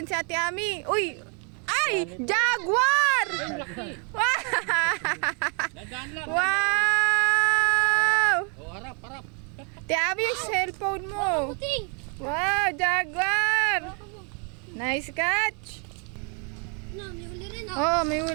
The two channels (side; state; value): left; quieter; 37.8 dB